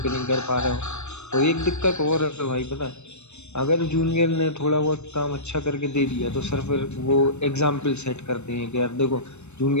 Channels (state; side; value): late; right; 0.82 ms